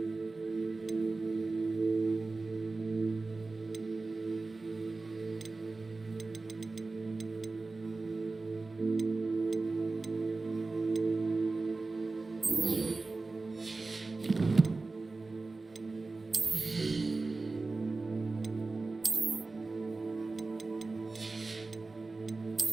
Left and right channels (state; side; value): quieter; left; 3.6 dB